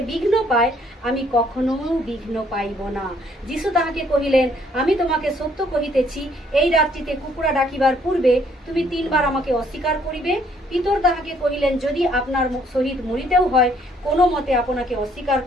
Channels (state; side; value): normal; both; correlation 0.65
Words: বিঘ্ন পায়, আমি কখনো বিঘ্ন পাইব না। যিশু তাহাকে কহিলেন, আমি তোমাকে সত্য কহিতেছি, এই রাত্রিতে কুকুরা ডাকিবার পূর্বে তুমি 3 বার আমাকে অস্বীকার করিবে। পিতর তাহাকে কহিলেন, যদি আপনার সহিত মরিতেও হয়, কোনো মতে আপনাকে অস্বীকার